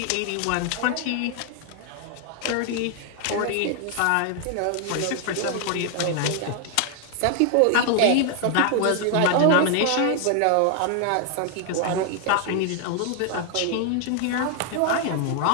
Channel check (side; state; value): both; different; correlation 0.00